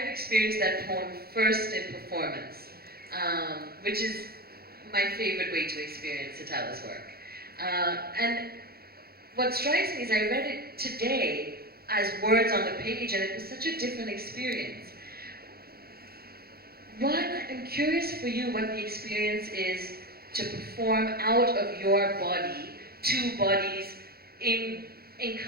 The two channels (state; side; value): late; left; 0.45 ms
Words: experienced that poem first in performance, which is my favorite way to experience Sitawa's work. And what strikes me is I read it today as words on the page, and it was such a different experience. One, I'm curious for you what the experience is to perform out of your body, two bodies in